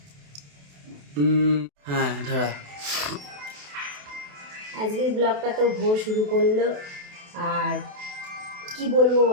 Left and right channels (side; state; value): left; late; 28 ms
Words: হ্যাঁ ধরা। আজকের ব্লগটা তো ভোর শুরু করলো, আর কি বলবো